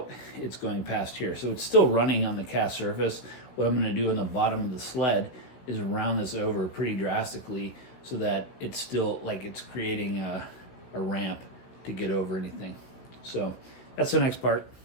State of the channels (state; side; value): late; right; 16 ms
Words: it's going past here. So it's still running on the cast surface. What I'm going to do on the bottom of the sled is round this over pretty drastically so that it's still, like, it's creating a ramp to get over anything. So that's the next part.